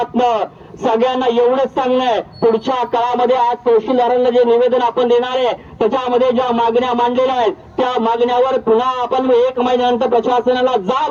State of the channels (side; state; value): both; identical; correlation 1.00